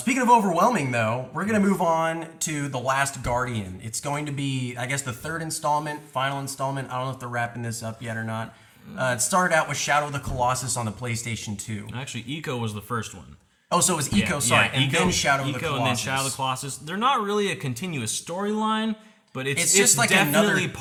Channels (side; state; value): both; identical; correlation 1.00